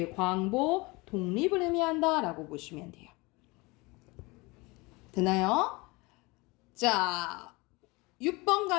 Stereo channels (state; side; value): quieter; right; 24.7 dB